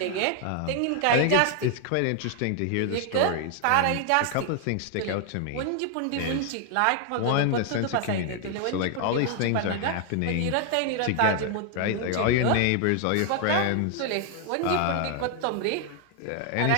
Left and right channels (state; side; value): different; both; correlation 0.00